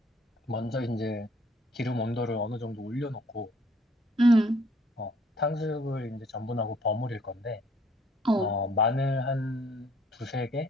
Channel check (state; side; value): normal; both; correlation 0.61